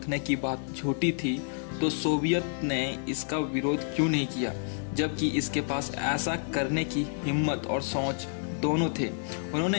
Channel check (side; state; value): right; silent; digital silence